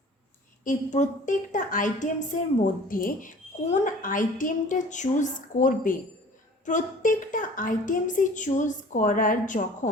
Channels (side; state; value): both; normal; correlation 0.47